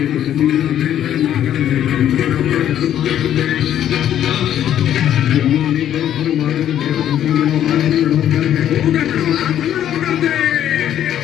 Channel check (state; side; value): quieter; right; 10.8 dB